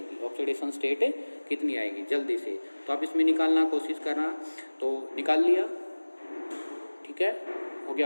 ऑक्सीडेशन स्टेट कितनी आएगी जल्दी से। तो आप इसमें निकालना कोशिश करना। तो निकाल लिया? ठीक है, हो गया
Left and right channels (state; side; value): inverted; both; correlation -1.00